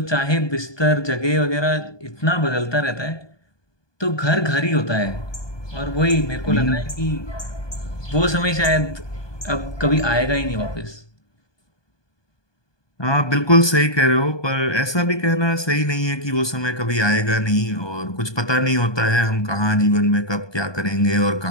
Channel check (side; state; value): right; late; 1.2 ms